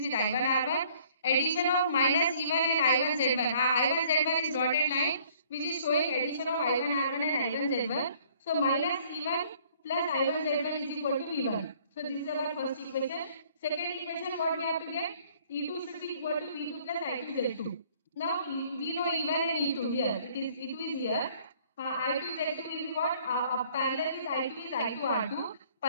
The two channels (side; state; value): both; inverted; correlation -0.58